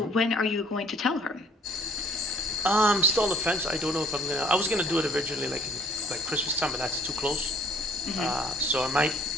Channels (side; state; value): both; normal; correlation 0.58